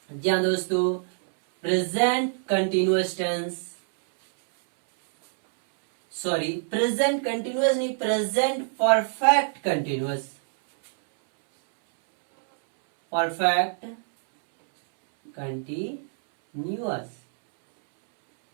जी हाँ दोस्तों, present continuous tense, sorry present continuous नहीं, present perfect continuous, perfect continuous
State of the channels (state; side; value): silent; left; 62 dB below the other